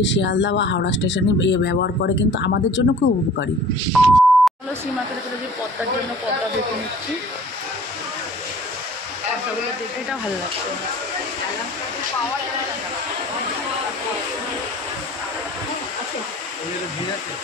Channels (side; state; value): both; normal; correlation 0.48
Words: শিয়ালদা বা হাওড়া স্টেশনে ব্যবহার করে, কিন্তু আমাদের জন্য খুব উপকারী। হলো সি মার্কেটে চলে যে পদ্মার জন্য পদ্মা দেখে নিচ্ছি, পদ্মাগুলো দেখে এটা ভালো লাগছে।